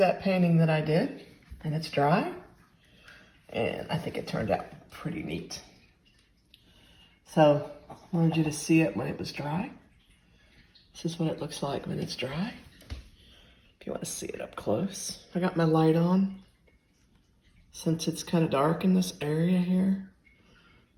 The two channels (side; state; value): both; identical; correlation 1.00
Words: painting that I did, and it's dry, and I think it turned out pretty neat. So I wanted you to see it when it was dry. This is what it looks like when it's dry. If you want to see it up close. I got my light on since it's kind of dark in this area here